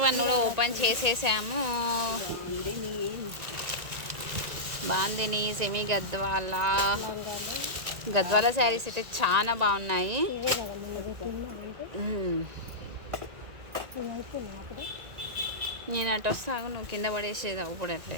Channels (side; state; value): left; late; 1.9 ms